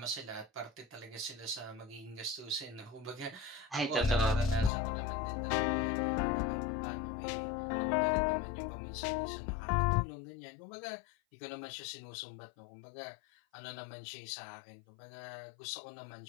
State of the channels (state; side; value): drops out; right; at 4.7 s